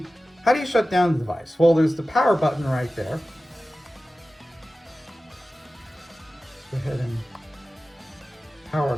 how do you shut down the device? Well, there's the power button right there. Go ahead and power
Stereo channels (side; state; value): both; normal; correlation 0.95